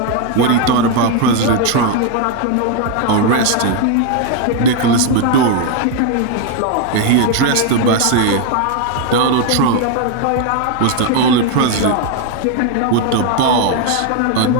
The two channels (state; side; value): different; both; correlation 0.01